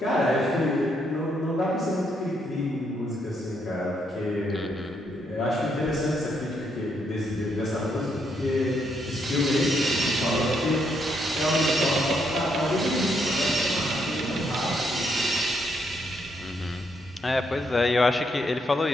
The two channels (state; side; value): normal; both; correlation 0.75